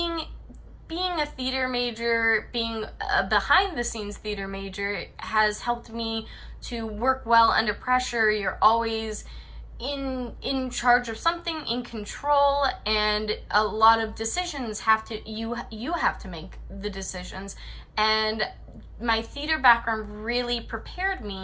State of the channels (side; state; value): both; identical; correlation 1.00